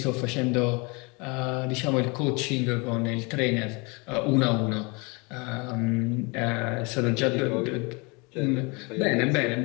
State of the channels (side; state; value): right; quieter; 29.2 dB